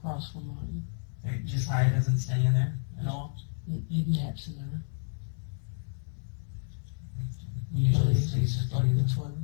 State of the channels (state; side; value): silent; right; 57 dB below the other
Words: from mine. Like, Josiah doesn't stay in there at all? He naps in there. He usually Lays, stays it's with like you. the toilet